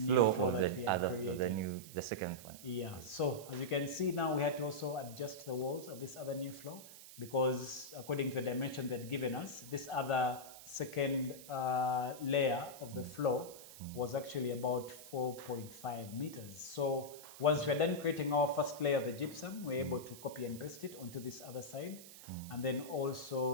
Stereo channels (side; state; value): right; noise; hiss, 16 dB below the sound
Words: floor that we had created. The second one. Yeah, so as you can see now, we had to also adjust the walls of this other new floor because according to the dimension they'd given us, this other second layer of the floor was actually about 4.5 meters. So once we're done creating our first layer of the gypsum, we're able to copy and paste it onto this other side. And then